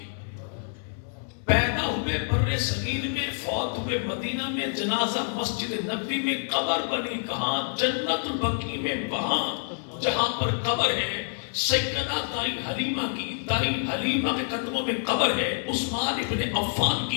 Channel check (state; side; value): silent; right; digital silence